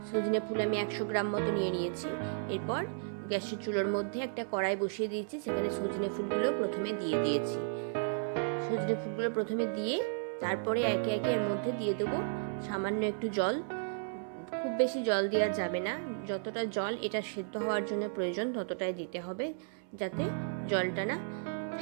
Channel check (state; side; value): silent; left; 55 dB below the other